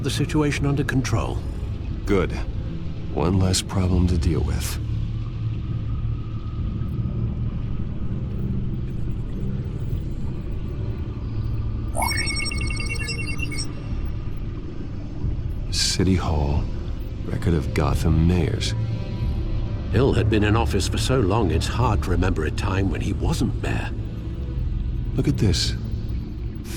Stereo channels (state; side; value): identical; both; correlation 1.00